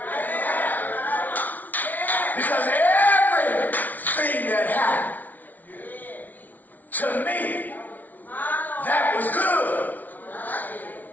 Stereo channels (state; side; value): late; right; 0.079 ms